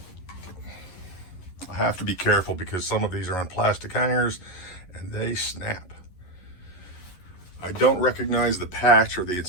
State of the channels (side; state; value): right; late; 11 ms